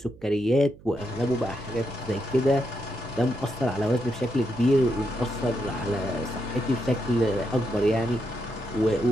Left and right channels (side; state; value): right; noise; hum, 22 dB below the sound